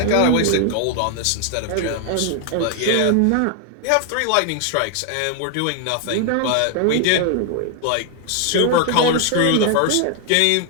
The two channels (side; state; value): both; different; correlation 0.00